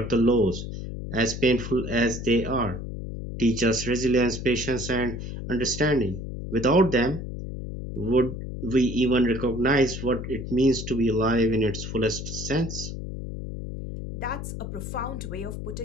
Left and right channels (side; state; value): left; noise; hum, 7 dB below the sound